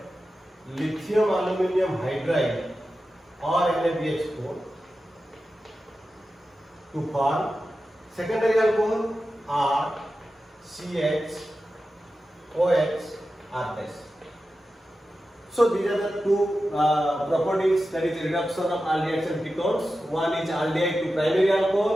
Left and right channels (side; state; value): both; normal; correlation 0.92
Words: lithium aluminum hydride or NaBH4 to form secondary alcohol RCH OH R+. So these are the two properties, that is reduction of aldehydes and ketones. One is aldehyde to primary